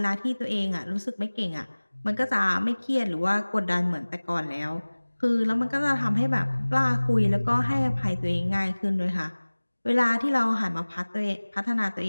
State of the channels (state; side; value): inverted; both; correlation -1.00